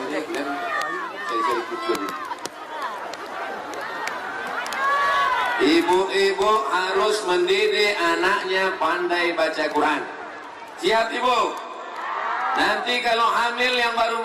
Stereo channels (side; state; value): both; identical; correlation 1.00